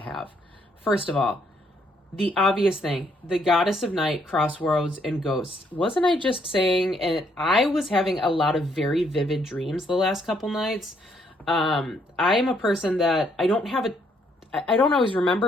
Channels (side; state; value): both; normal; correlation 0.70